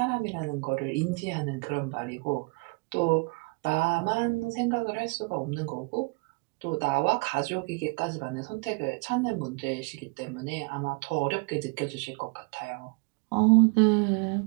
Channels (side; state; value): left; quieter; 30.7 dB